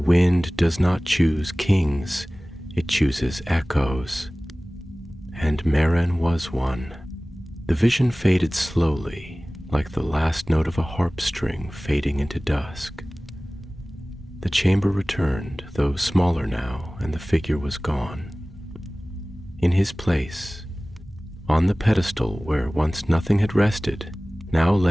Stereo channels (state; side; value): normal; both; correlation 0.98